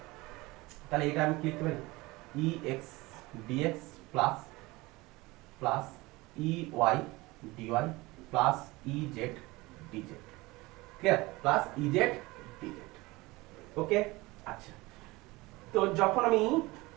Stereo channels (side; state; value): left; quieter; 21.8 dB